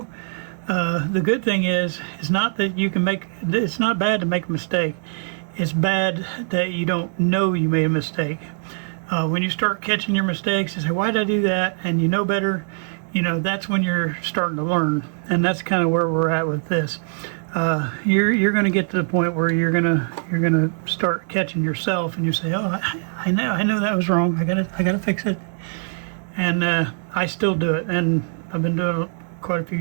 The good thing is it's not that you can make, it's not bad to make a mistake. It's bad that you don't know you made a mistake. When you start catching your mistakes and say, why did I do that? And you know better, you know, that's when you're starting to learn. And that's kind of where we're at with this. You're going to get to the point where you're gonna start catching yourself, and you say, oh, I know that was wrong. I gotta fix it. And I still do it, and I've been doing it quite a few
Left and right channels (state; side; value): silent; left; 64 dB below the other